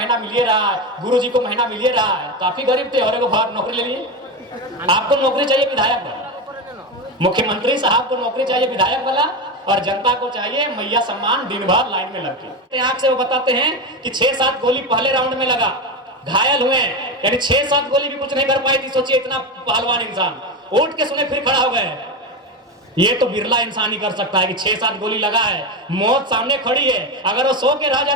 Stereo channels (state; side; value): normal; both; correlation 0.17